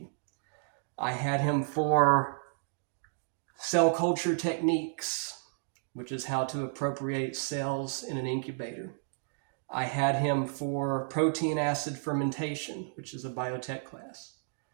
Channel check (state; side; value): silent; left; digital silence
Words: I had him for cell culture techniques, which is how to appropriate cells in an incubator. I had him for protein acid fermentation, which is a biotech class.